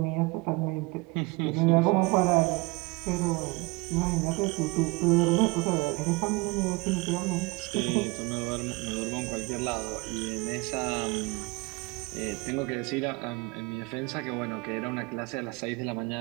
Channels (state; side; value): quieter; left; 24.8 dB